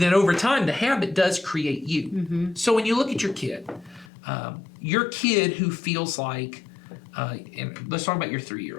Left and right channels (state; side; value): drops out; right; at 4.0 s